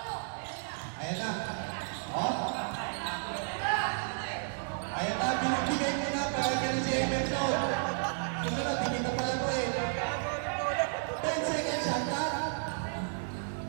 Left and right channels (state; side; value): silent; left; 56 dB below the other